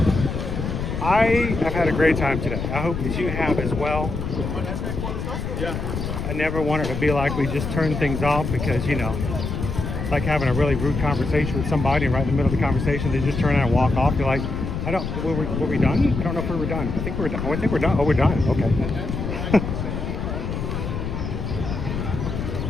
I have had a great time today. I hope that you have as well. I never want it to be like we just turn things off because, you know, it's like having a really rude conversation with somebody and right in the middle of the conversation, they just turn around and walk off. You're like, were we done? I don't know if we were done. I think we're done. Oh, I think we're done. Oh, we're done. Okay.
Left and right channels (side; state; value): left; noise; rumble, 4 dB below the sound